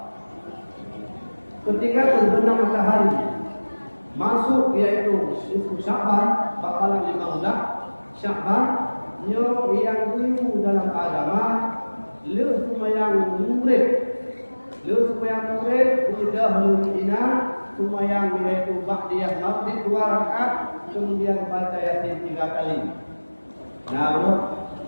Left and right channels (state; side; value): inverted; both; correlation -1.00